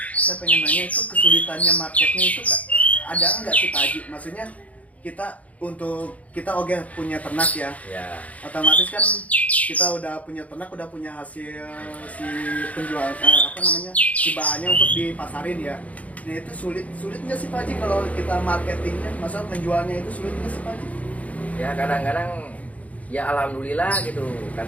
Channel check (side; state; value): right; late; 0.069 ms